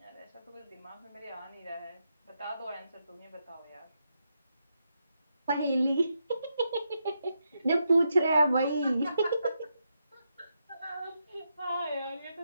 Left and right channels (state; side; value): inverted; both; correlation -0.83